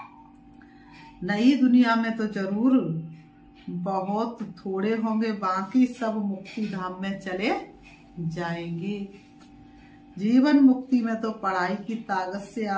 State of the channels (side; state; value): both; identical; correlation 1.00